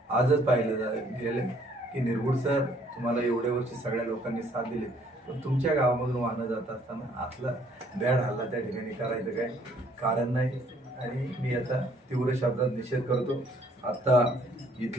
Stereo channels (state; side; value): normal; both; correlation 0.62